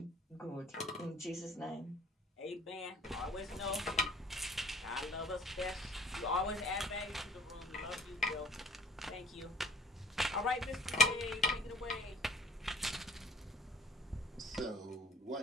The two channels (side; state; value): both; normal; correlation 0.53